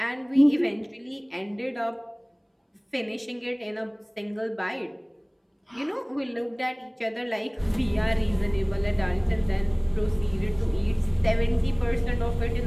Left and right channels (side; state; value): both; identical; correlation 1.00